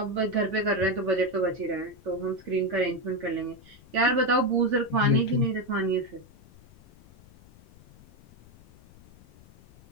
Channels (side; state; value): left; noise; rumble, 24 dB below the sound